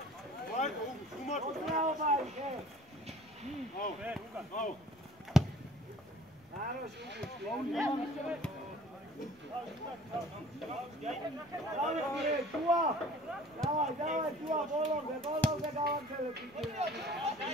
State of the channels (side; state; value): both; normal; correlation 0.49